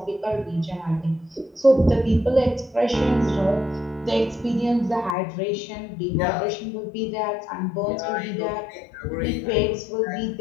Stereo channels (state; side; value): drops out; right; at 5.2 s